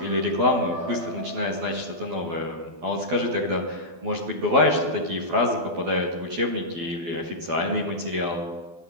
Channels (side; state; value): left; late; 12 ms